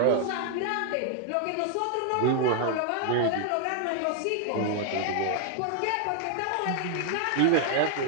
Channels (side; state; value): both; different; correlation 0.00